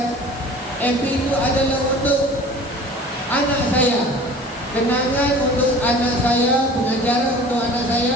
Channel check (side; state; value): both; normal; correlation 0.44